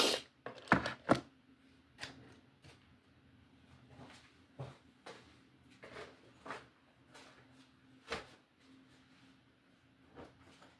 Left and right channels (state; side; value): identical; both; correlation 1.00